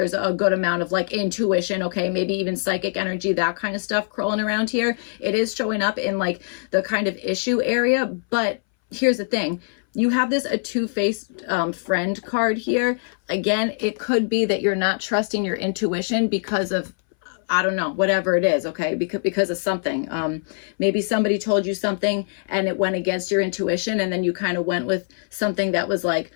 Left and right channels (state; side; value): silent; right; 61 dB below the other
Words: a good amount of like intuition, okay? Maybe even psychic energy, that kind of stuff crawling around here. It is showing up in like the kind of issue area, but here's the thing. You have this a two-faced friend card here. Again, it could be that you're not trusting your intuition because of, I don't know, whatever it is, okay? Because of something. Maybe somebody told you something and it went against your intuition and then you kind of went with something that was like,